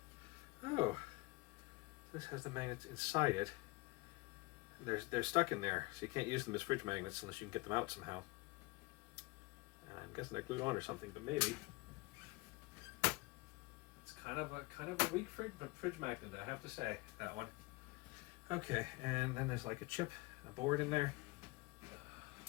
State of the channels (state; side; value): quieter; right; 24.5 dB